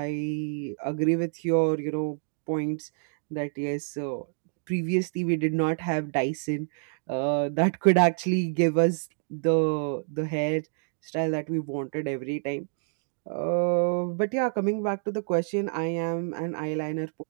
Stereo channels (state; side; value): silent; left; digital silence